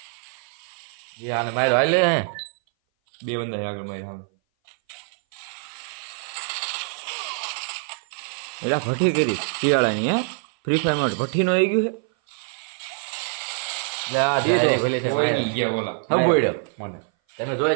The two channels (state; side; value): silent; left; 58 dB below the other